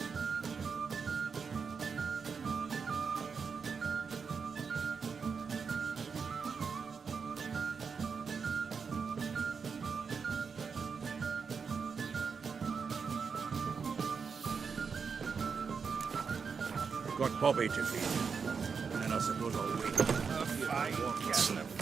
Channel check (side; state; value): left; quieter; 5.7 dB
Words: Got Bobby to feed. And I suppose I'll wait.